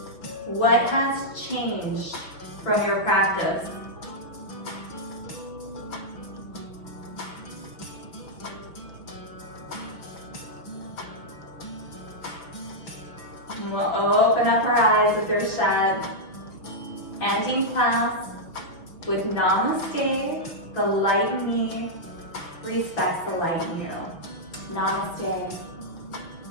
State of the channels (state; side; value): late; right; 6.0 ms